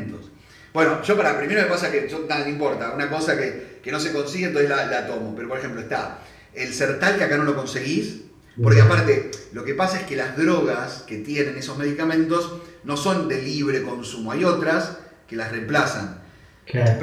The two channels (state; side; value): identical; both; correlation 1.00